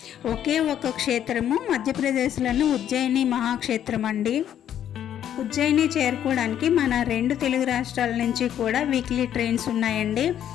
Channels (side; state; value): right; quieter; 10.3 dB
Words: ఒకే ఒక క్షేత్రము మధ్యప్రదేశ్లోని ఉజ్జయిని మహాక్షేత్రం అండి. ఉజ్జయిని చేరుకోవడానికి మన 2 తెలుగు రాష్ట్రాల నుంచి కూడా వీక్లీ ట్రైన్స్ ఉన్నాయండి.